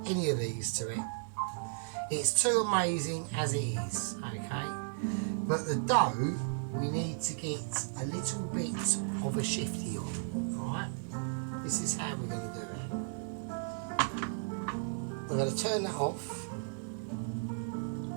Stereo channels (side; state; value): left; silent; digital silence